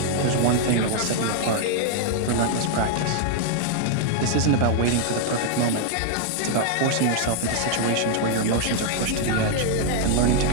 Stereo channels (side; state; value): both; different; correlation 0.00